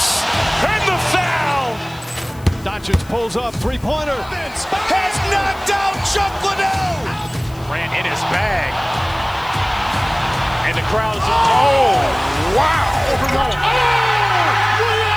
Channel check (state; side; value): noise; left; hiss, 24 dB below the sound